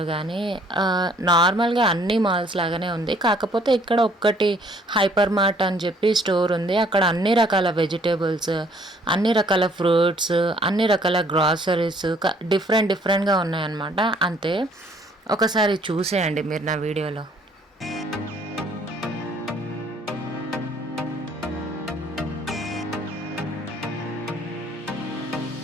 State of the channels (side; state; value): both; normal; correlation 0.61